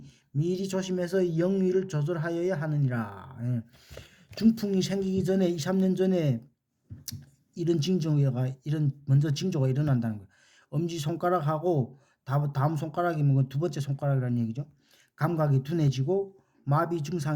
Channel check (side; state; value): both; identical; correlation 1.00